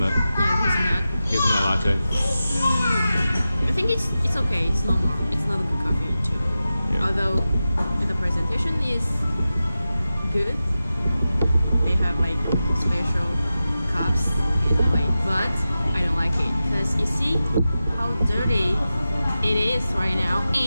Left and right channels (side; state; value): both; inverted; correlation -0.93